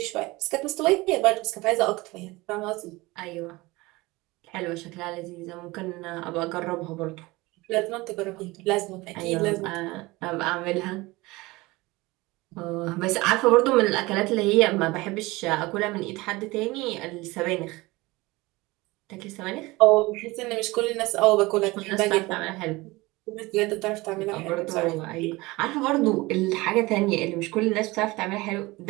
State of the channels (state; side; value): quieter; left; 21.8 dB